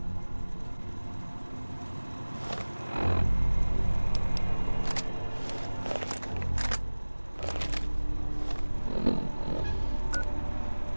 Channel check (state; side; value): inverted; both; correlation -1.00